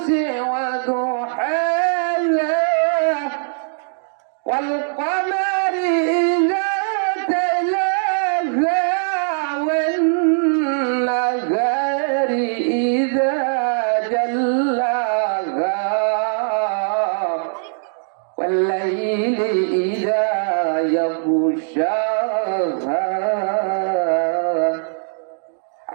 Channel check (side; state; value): left; silent; digital silence